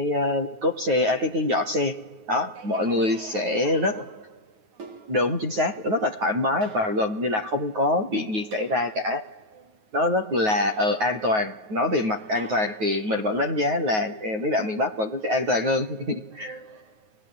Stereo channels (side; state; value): left; late; 9.4 ms